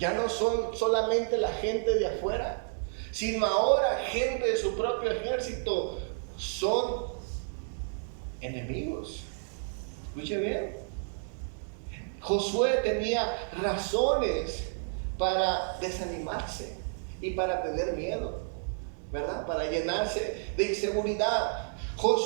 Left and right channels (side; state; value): left; silent; digital silence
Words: no son solamente la gente de afuera, sino ahora gente de su propio ejército son enemigos. Escuche bien. Josué tenía razones para desanimarse y para tener miedo, ¿verdad? Para llenarse de inseguridad.